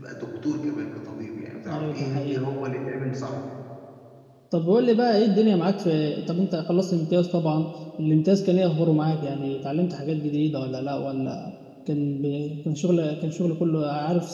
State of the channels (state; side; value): identical; both; correlation 1.00